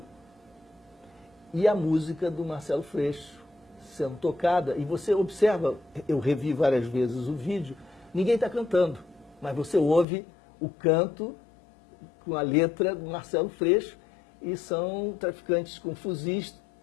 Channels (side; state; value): right; drops out; at 10.1 s